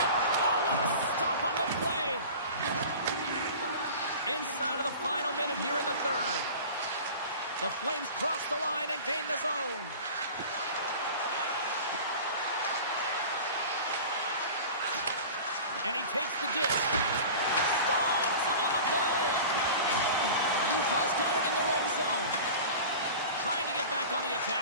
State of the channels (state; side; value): inverted; both; correlation -0.37